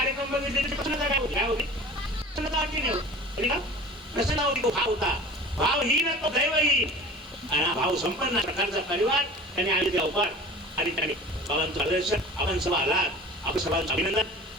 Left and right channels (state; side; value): normal; both; correlation 0.40